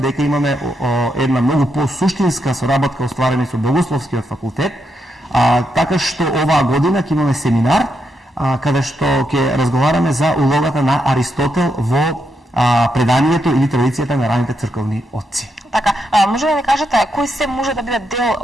имаме една многу посуштинска соработка остварена со Богословскиот факултет, така што оваа година ќе имаме семинар каде што ќе разговараме за улогата на Аристотел во преданието или традицијата на раните црковни отци. Така, може да ни кажете кој се може да биде дел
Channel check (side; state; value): both; normal; correlation 0.81